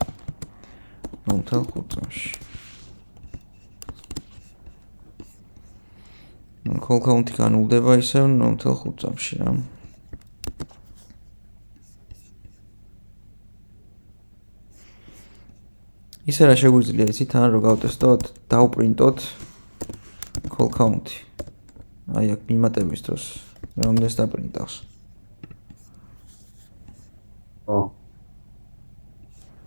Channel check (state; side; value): inverted; both; correlation -1.00